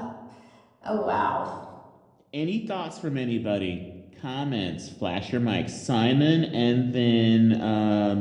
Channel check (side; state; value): both; identical; correlation 1.00